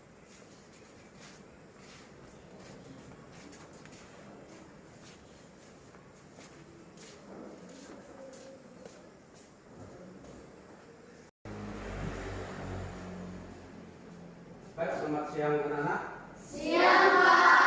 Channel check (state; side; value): identical; both; correlation 1.00